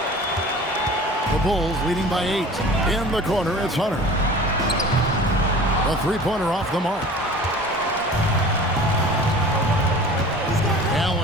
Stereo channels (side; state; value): both; normal; correlation 0.42